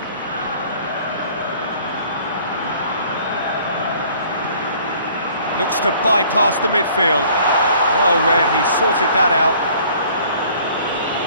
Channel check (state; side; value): inverted; both; correlation -0.55